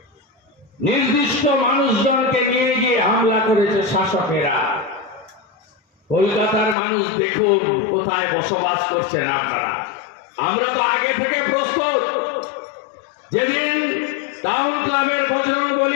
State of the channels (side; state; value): right; drops out; at 6.8 s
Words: নির্দিষ্ট মানুষজনকে নিয়ে গিয়ে হামলা করেছে শাসকেরা। কলকাতার মানুষ দেখুন কোথায় বসবাস করছেন আপনারা। আমরা তো আগে থেকে প্রস্তুত। যেদিন টাউন ক্লাবের